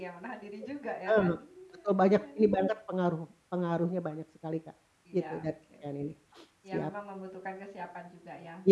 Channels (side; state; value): both; identical; correlation 1.00